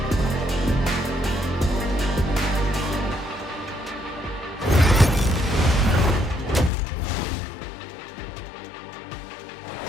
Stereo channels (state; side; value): drops out; right; at 6.7 s